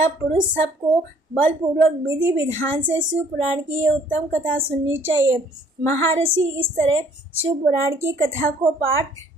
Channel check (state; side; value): normal; both; correlation 0.59